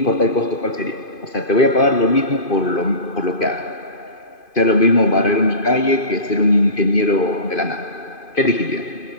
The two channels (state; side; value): late; right; 2.5 ms